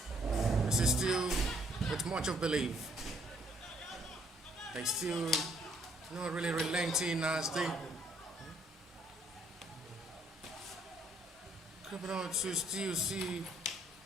This is still with much of belief. They still not really relenting as they crabbing out to still see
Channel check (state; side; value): normal; both; correlation 0.66